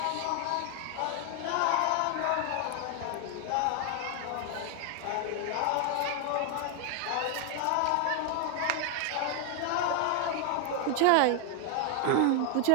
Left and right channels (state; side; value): different; both; correlation 0.00